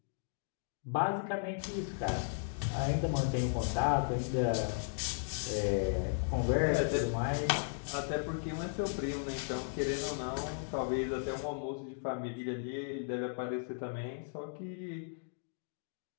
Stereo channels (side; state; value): right; silent; digital silence